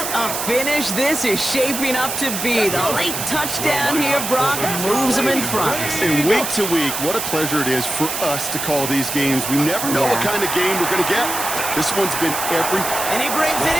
a finish this is shaping up to be. The late touchdown here, Brock, moves them in front. And week to week, what a pleasure it is for us to call these games. We never know what kind of game we're going to get. This one's been everything. And he brings it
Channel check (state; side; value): noise; right; hiss, 4 dB below the sound